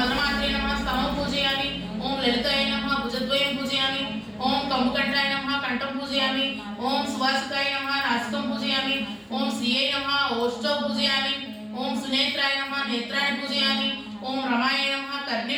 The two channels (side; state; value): both; identical; correlation 1.00